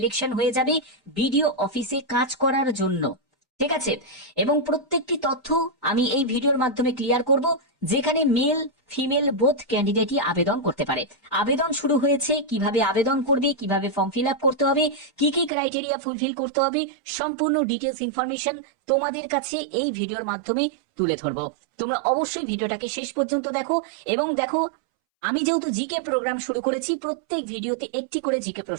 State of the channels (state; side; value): drops out; left; at 15.5 s